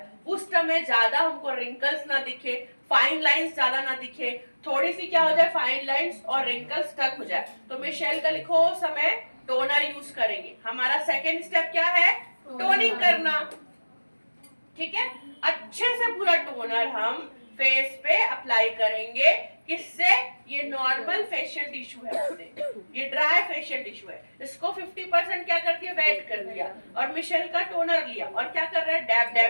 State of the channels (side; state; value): both; inverted; correlation -1.00